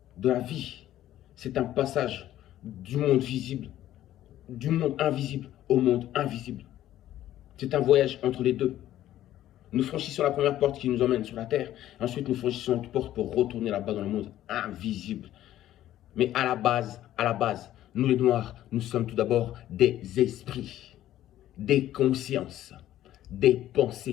de la vie, c'est un passage du monde visible, du monde invisible au monde invisible. C'est un voyage entre les deux. Nous franchissons la première porte qui nous emmène sur la terre. Ensuite, nous franchissons une porte pour retourner là-bas dans le monde invisible. Mais à la base, nous les Noirs, nous sommes tout d'abord des esprits, des consciences, des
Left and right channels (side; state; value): right; quieter; 13.1 dB